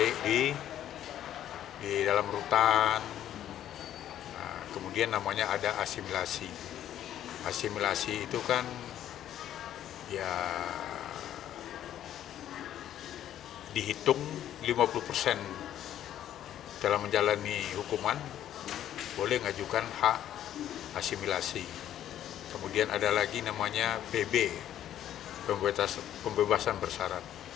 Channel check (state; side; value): quieter; right; 11.3 dB